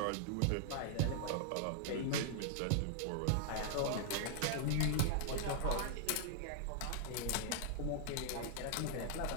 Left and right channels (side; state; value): both; different; correlation -0.01